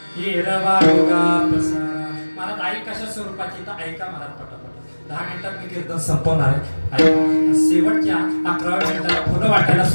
महाराज आई कशा स्वरूपाची तर ऐका महाराज पटापट. 10 मिनिटात मी कीर्तन संपवणार आहे. शेवटच्या 11व्या मिनिटाला फुलं वाटायला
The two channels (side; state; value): both; inverted; correlation -1.00